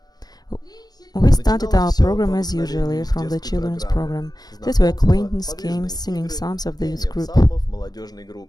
We started our program as usually from the children's program. That were acquaintance games, singing psalms of the youth group.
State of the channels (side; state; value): right; late; 0.19 ms